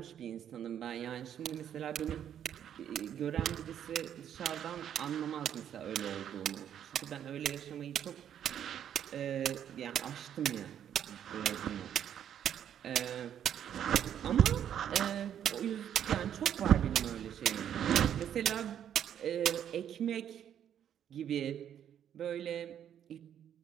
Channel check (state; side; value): quieter; left; 9.7 dB